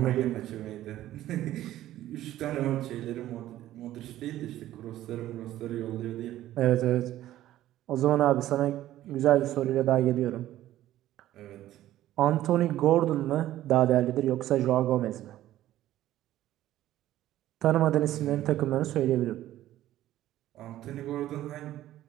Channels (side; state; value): left; quieter; 13.9 dB